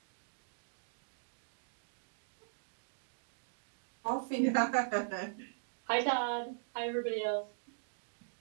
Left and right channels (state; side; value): silent; left; digital silence